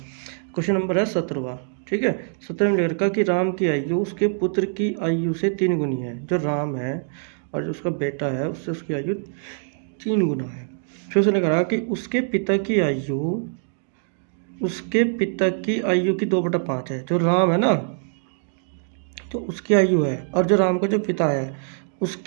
नंबर है 17वां। ठीक है, 17 में लिखा कि राम की आयु उसके पुत्र की आयु से 3 गुनी है। जो राम है और जो उसका बेटा है उससे उसकी आयु 3 गुना है। फिर उसने कहा कि उसके पिता की आयु की 2/5 है। जो राम है ना, तो उसकी आयु है, और जो राम का जो पिता है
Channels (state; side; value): silent; left; digital silence